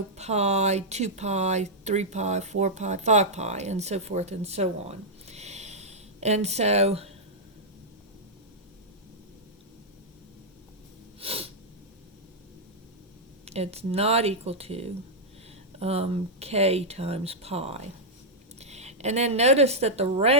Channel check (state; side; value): normal; both; correlation -0.07